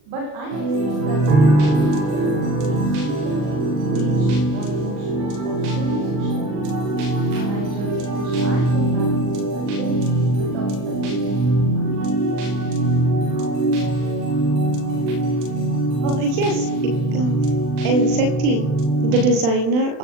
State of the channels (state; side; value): late; left; 40 ms